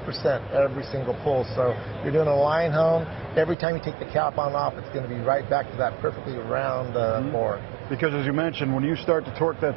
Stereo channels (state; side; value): drops out; left; at 3.6 s